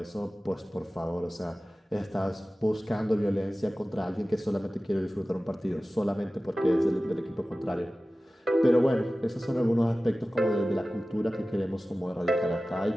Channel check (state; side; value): normal; both; correlation 0.96